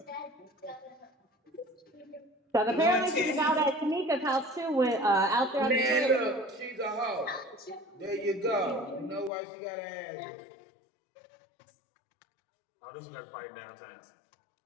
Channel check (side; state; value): right; drops out; at 9.3 s